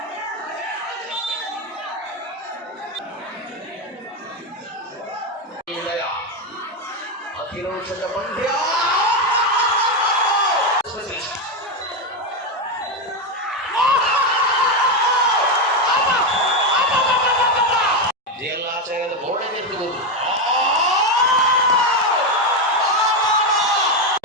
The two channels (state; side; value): normal; both; correlation 0.09